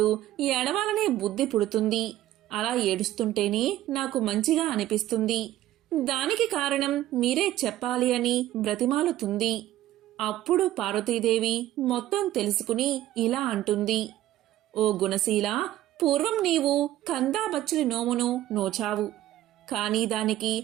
ఏడవాలనే బుద్ధి పుడుతుంది. అలా ఏడుస్తుంటేనే నాకు మంచిగా అనిపిస్తుంది. దానికి కారణం మీరే చెప్పాలి అని బ్రతిమాలుతుంది. అప్పుడు పార్వతీదేవి మొత్తం తెలుసుకుని ఇలా అంటుంది. ఓ గుణశీల, పూర్వం నీవు కందాబచ్చలి నోమును నోచావు. కాని దానికి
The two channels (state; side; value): quieter; left; 14.0 dB